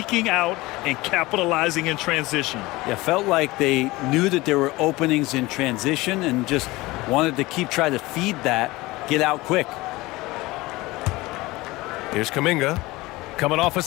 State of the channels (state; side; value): quieter; right; 20.6 dB